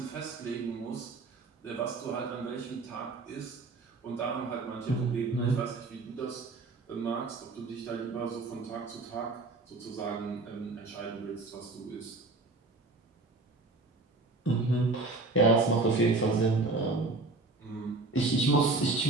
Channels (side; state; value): left; quieter; 3.5 dB